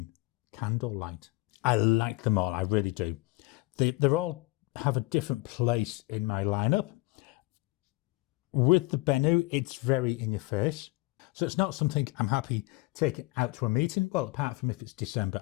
Candlelight. I like them all, I really do. They're all have a different place in my lineup. With the Benu, it's very in your face. So it's not something I'm happy taking out to a meeting. Well, apart from if it's December,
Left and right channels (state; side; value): quieter; right; 22.2 dB